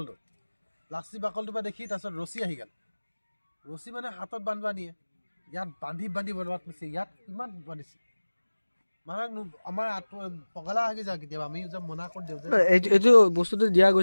বাকলটোৰ পৰা দেখি তাৰপিছত ৰছী আহি গ'ল ৰছী মানে হাতত বান্ধিব নিয়ে ইয়াত বান্ধি বৰবাদ কৰিছে ইয়াত কিমান বান্ধিছে মানে আমাৰ পগলা আহি যায় কেতিয়াবা আমি যে মনা কৰি দিওঁ যে এইটো বস্তুটো দিয়া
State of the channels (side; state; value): both; inverted; correlation -1.00